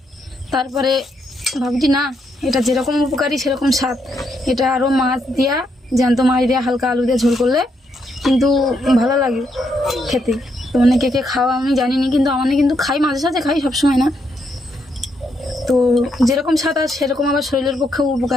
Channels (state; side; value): normal; both; correlation 0.77